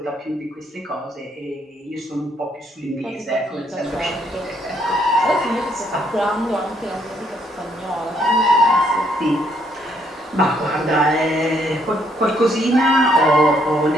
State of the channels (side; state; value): both; normal; correlation 0.70